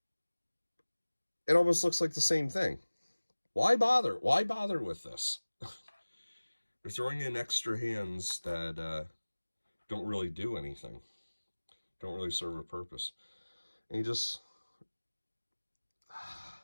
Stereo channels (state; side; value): inverted; both; correlation -1.00